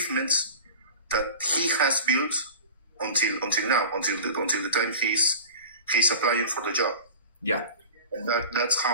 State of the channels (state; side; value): inverted; both; correlation -0.36